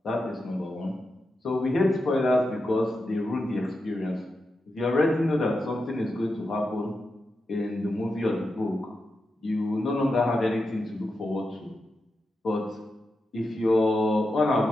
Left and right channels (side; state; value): both; normal; correlation 0.88